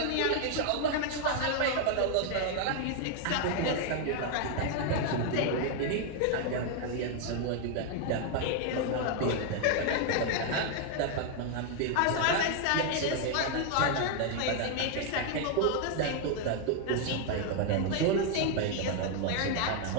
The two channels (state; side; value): different; both; correlation 0.00